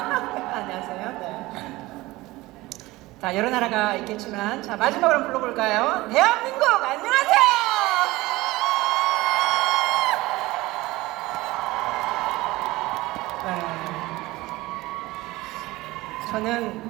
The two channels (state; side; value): quieter; left; 19.5 dB